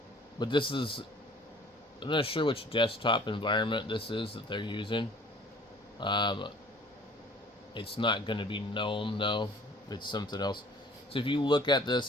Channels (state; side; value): normal; both; correlation 0.52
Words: but this is, I'm not sure which desktop environment this is that they're using. Um, it's not going to be GNOME though. It's something else. So if you look at this,